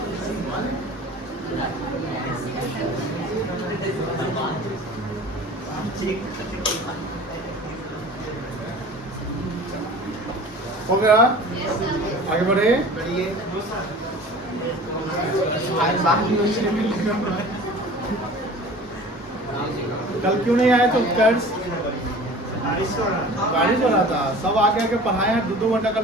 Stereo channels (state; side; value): normal; both; correlation 0.42